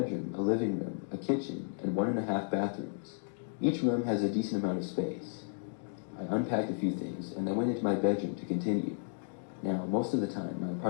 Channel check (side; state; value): right; silent; digital silence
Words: a living room, a kitchen, and 1.5 bathrooms. Each room has a decent amount of space. I unpacked a few things, and I went into my bedroom to continue. Now, most of the time, my